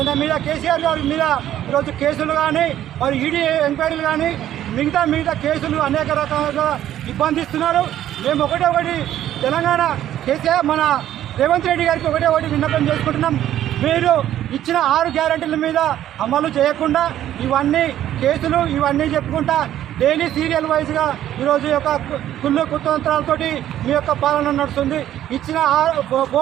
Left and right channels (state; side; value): quieter; left; 12.0 dB